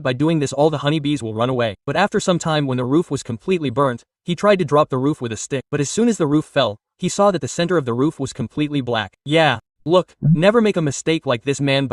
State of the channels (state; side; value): identical; both; correlation 1.00